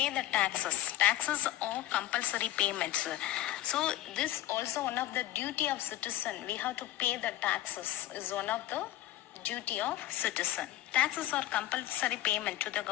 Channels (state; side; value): quieter; right; 14.4 dB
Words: the taxes. Taxes are compulsory payments. So this also one of the duty of citizen. We have to pay the taxes is one of the duty of citizen. Taxes are compulsory payment to the